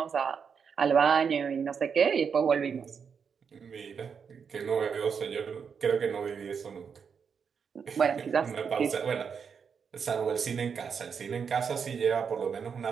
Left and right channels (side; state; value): left; quieter; 6.5 dB